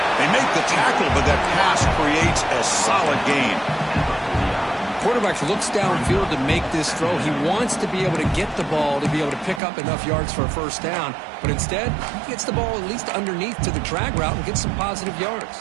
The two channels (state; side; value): drops out; left; at 9.6 s